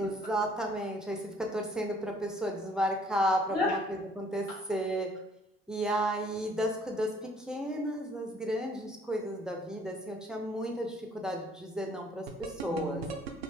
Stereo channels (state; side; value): normal; both; correlation 0.60